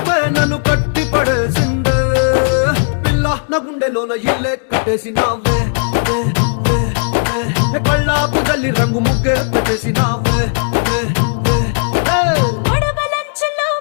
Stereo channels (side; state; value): right; silent; digital silence